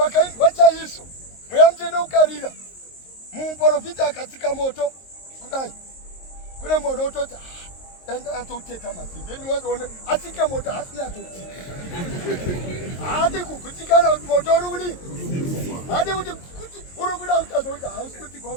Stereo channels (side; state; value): right; late; 22 ms